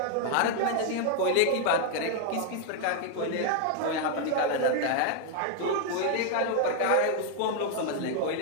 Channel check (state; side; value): different; both; correlation 0.00